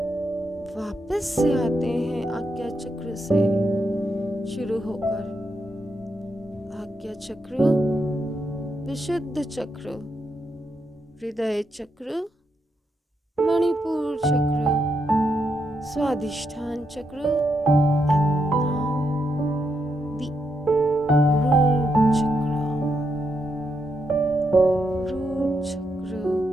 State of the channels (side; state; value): both; normal; correlation 0.81